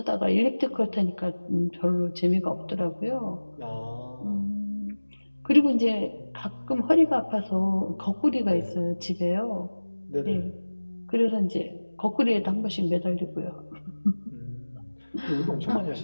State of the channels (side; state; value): both; inverted; correlation -1.00